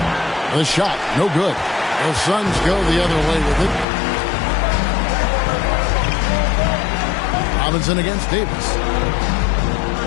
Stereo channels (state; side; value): drops out; right; at 3.9 s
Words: The shot, no good. The Suns go the other way with it. Robinson against Davis.